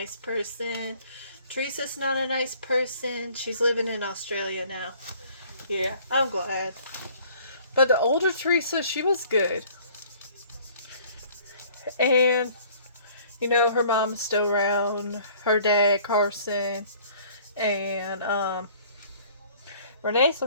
person. Teresa's not a nice person. She's living in Australia now. Yeah, I'm glad. But the older Teresa, she was good. And, you know, her mom's still around. Her dad, Carson. And, Renee's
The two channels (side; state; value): both; inverted; correlation -0.54